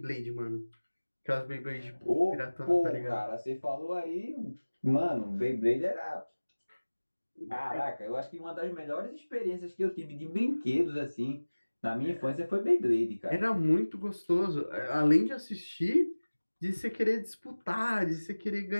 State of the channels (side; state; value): both; inverted; correlation -1.00